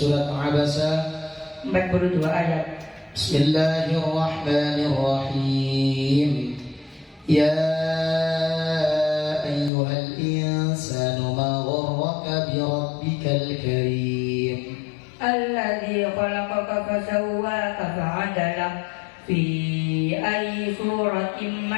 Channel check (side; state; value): right; drops out; at 9.7 s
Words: Abasa? 42 ayat. Bismillahirrahmanirrahim. Ya ayyuhal insanu ma gharraka bi rabbikal karim. Alladzi khalaqaka fasawwaka fa'adalak fi ayyi suratin